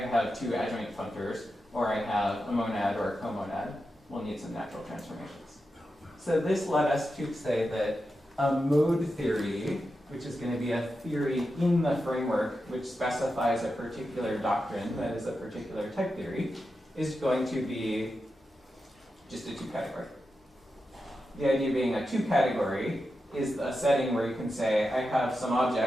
have two adjoint functors, or I have a monad or a comonad. We'll need some natural transformations. So this led us to say that a mode theory, which is going to be a theory in the framework which specifies a particular doctrine, that is a particular type theory, is going to be just a 2-category. The idea being a 2-category is a setting where you can say, I have some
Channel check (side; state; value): both; normal; correlation 0.89